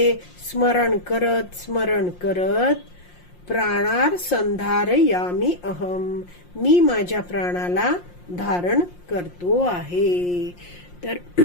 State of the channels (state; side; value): late; right; 5.7 ms